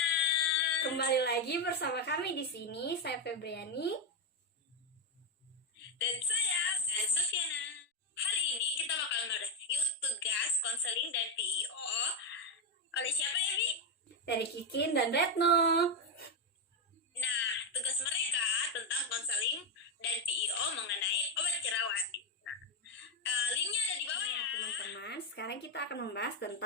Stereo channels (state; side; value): normal; both; correlation 0.08